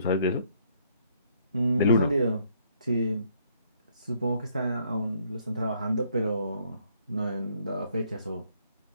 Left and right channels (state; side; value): inverted; both; correlation -0.67